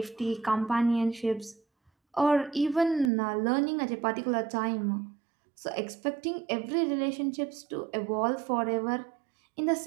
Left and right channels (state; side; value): drops out; left; at 3.1 s